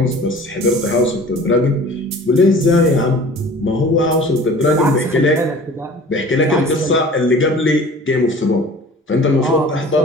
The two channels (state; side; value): normal; both; correlation 0.44